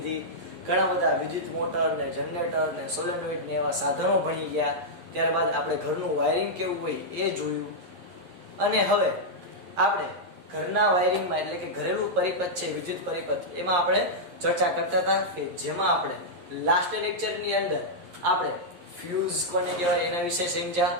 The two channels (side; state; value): left; late; 11 ms